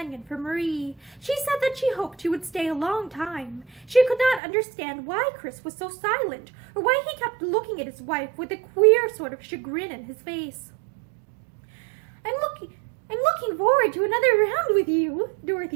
for Marie. She said that she hoped she would stay a long time. She could not understand why Chris was so silent, or why he kept looking at his wife with a queer sort of chagrin in his face. I'm looking forward to another round with you,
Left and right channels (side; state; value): left; drops out; at 4.4 s